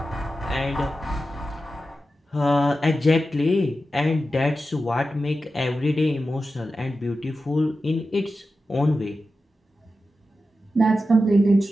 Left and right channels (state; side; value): normal; both; correlation 0.92